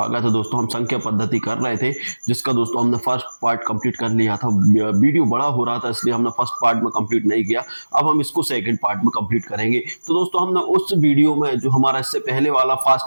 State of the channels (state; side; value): inverted; both; correlation -1.00